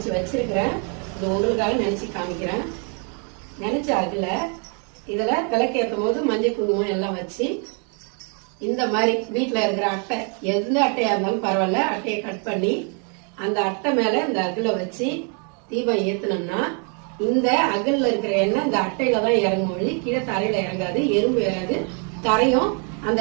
வச்சிருக்கிறேன். இது உங்களுக்காக நினைச்சு காமிக்கிறேன். நினைச்ச அகல இதுல விளக்கேற்றும் போது மஞ்சள் குங்குமம் எல்லாம் வச்சு இந்த மாதிரி வீட்டுல இருக்கிற அட்டை, எந்த அட்டையா இருந்தாலும் பரவாயில்ல, அட்டையை கட் பண்ணி அந்த அட்டை மேல இந்த அகல வச்சு தீபம் ஏத்தனோம்னா இந்த அகல்ல இருக்கிற எண்ணெய் இந்த அட்டையில தான் இறங்கும் வழி கீழே தரையில இறங்காது, எறும்பு ஏறாது, தரையும் அந்த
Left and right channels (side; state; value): left; quieter; 39.1 dB